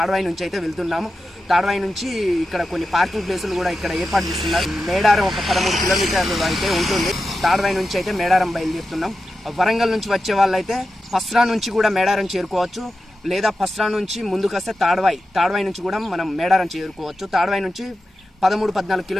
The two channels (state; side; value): normal; both; correlation 0.91